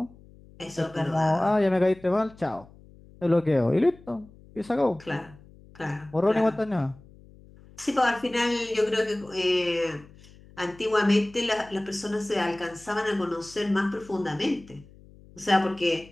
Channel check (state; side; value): noise; left; hum, 23 dB below the sound